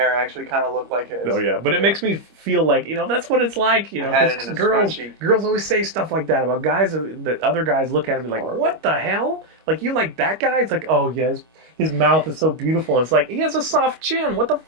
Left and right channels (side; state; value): left; late; 25 ms